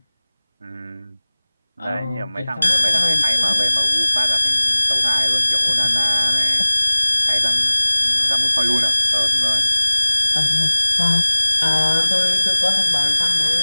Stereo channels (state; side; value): inverted; both; correlation -0.99